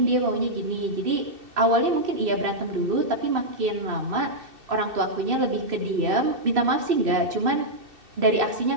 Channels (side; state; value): left; late; 2.6 ms